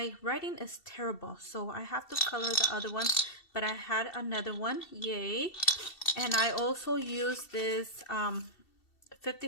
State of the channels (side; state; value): right; late; 2.7 ms